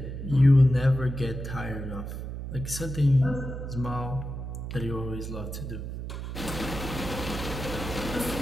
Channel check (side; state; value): right; noise; hum, 6 dB below the sound